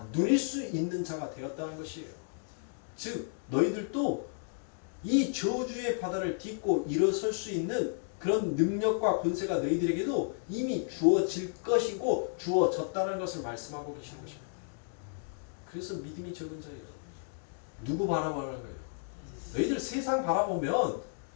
누릴 수 있는 자가 되었다는 것이에요. 즉 너희들도 이 저주의 바다를 딛고 일어설 수 있는 그런 능력과 권세가 너희들에게도 이미 주어질 것이고 주어졌다는 것을 말씀하고 계시는 것입니다. 그래서 믿음이 적은 자예요. 누구 바라보는 거예요? 너희들 세상 바라보면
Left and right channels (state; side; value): silent; right; digital silence